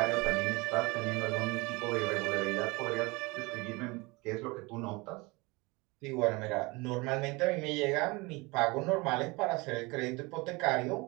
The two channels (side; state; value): left; quieter; 25.3 dB